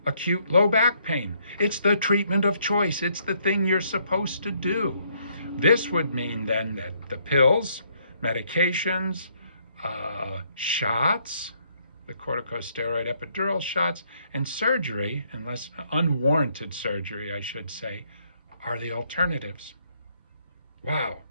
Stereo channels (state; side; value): inverted; both; correlation -0.69